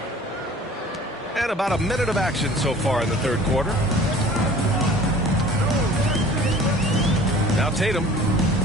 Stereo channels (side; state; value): both; normal; correlation 0.47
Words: And about a minute of action so far in the third quarter. Now Tatum.